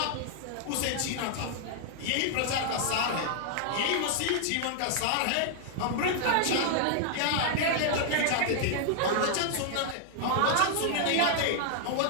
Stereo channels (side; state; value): both; different; correlation -0.01